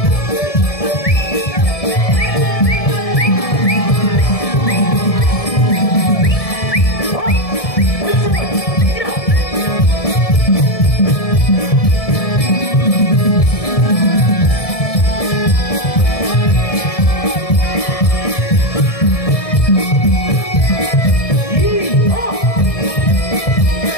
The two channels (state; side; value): late; right; 1.7 ms